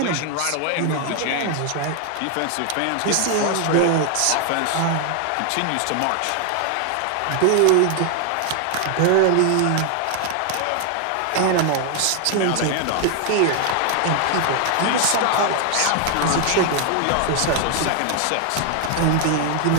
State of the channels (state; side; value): different; both; correlation 0.00